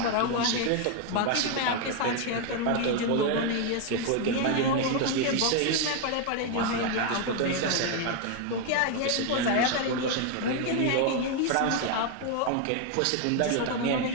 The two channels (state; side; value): different; both; correlation 0.01